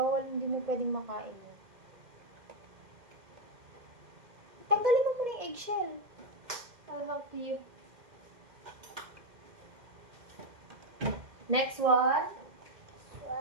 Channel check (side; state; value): left; late; 2.1 ms